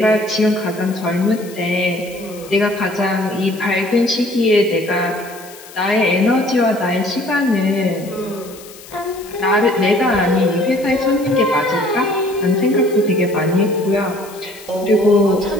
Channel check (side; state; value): left; noise; hiss, 19 dB below the sound